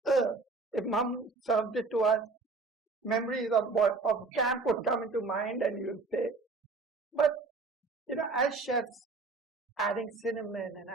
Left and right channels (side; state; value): left; quieter; 3.9 dB